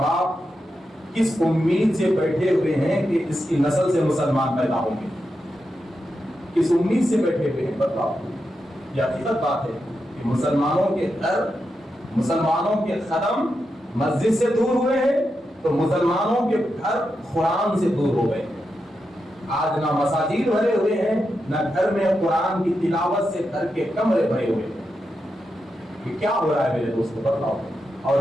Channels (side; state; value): both; normal; correlation 0.87